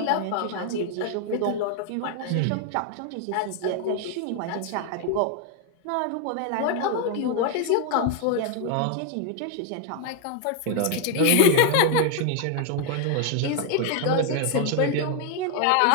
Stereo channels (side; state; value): both; different; correlation 0.00